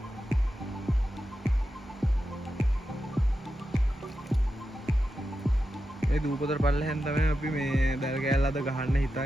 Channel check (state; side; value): normal; both; correlation 0.90